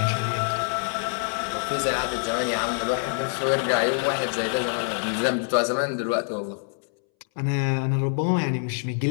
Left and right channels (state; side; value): silent; right; 61 dB below the other